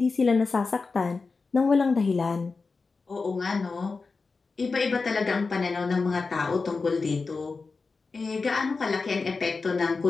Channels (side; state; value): right; quieter; 4.3 dB